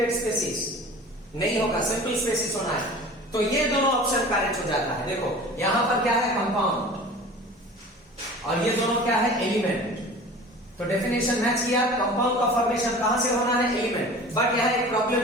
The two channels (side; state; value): both; normal; correlation 0.41